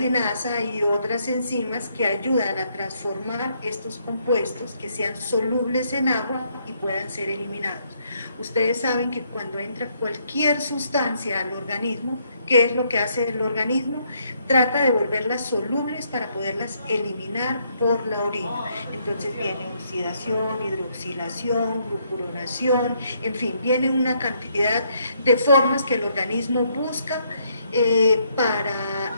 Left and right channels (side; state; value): both; inverted; correlation -0.72